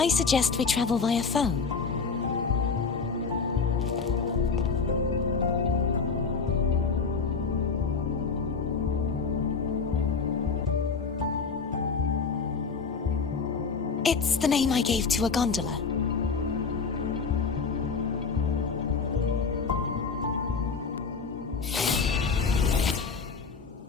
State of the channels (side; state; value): right; quieter; 5.1 dB